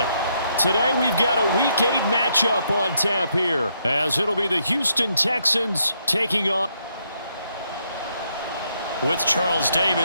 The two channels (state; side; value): inverted; both; correlation -0.76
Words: Today we've got a Week 8 matchup on tap here as it'll be the Houston Texans taking on. With Charles